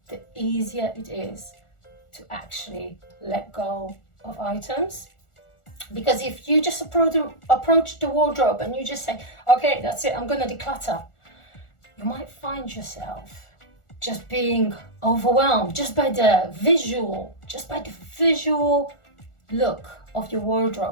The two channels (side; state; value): right; late; 1.4 ms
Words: the easier it is to actually let go of items. Because if you just approach the wardrobe and you just say, okay, that's it, I'm gonna declutter, you might find yourself just being overwhelmed just by the visual look of your